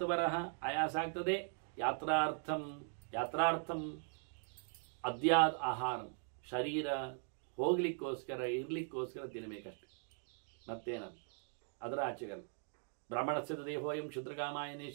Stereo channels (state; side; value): silent; left; 51 dB below the other